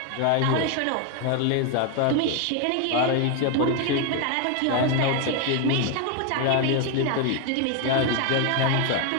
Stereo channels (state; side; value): different; both; correlation 0.01